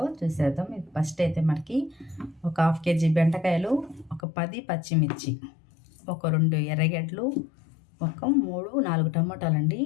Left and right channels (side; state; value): right; drops out; at 4.2 s